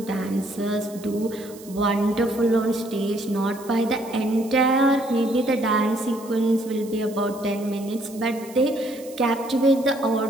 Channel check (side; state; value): right; noise; hiss, 20 dB below the sound